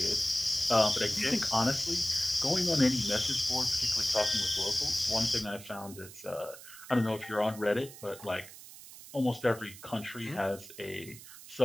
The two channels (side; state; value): right; noise; hiss, 16 dB below the sound